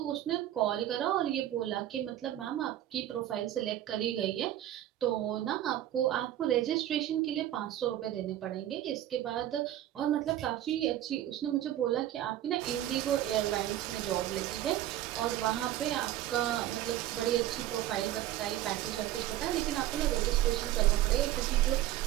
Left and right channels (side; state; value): left; quieter; 13.0 dB